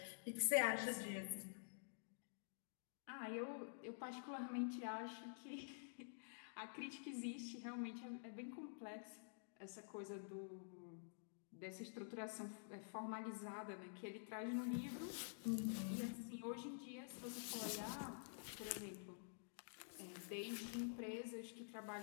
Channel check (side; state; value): right; silent; digital silence